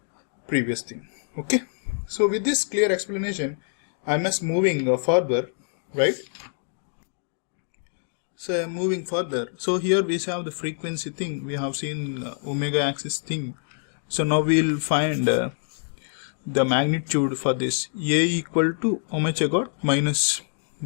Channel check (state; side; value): silent; right; digital silence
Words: previous thing. Okay, so with this clear explanation, I am moving further, right? So I am moving further. So here we have the frequency thing. We have seen omega axis thing. So now we will find the magnitude for this. A equal to how much I got? Minus